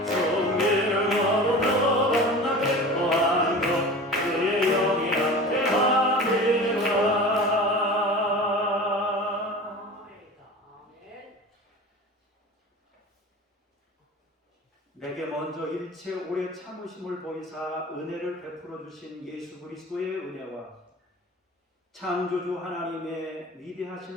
성기를 걸으며 만나 기뻐하는 것 주의 영이 내게 먼저 일체 오래 참으심을 보이사 은혜를 베풀어 주신 예수 그리스도의 은혜와 창조주 하나님의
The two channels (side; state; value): both; normal; correlation 0.35